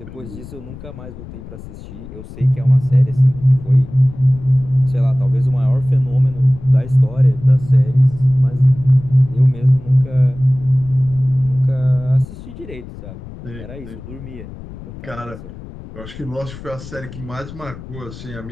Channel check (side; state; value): left; noise; rumble, 15 dB below the sound